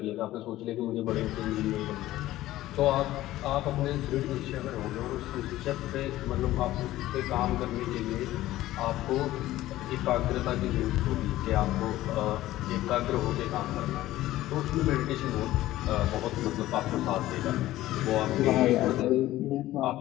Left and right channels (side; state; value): right; quieter; 15.5 dB